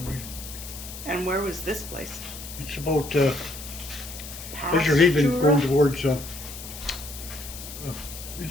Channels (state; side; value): noise; left; hiss, 12 dB below the sound